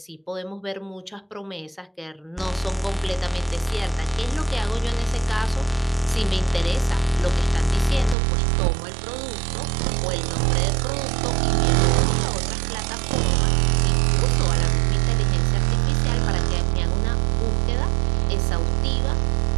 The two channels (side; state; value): left; drops out; at 8.2 s